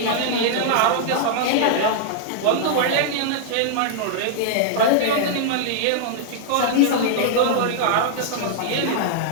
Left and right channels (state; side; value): different; both; correlation -0.01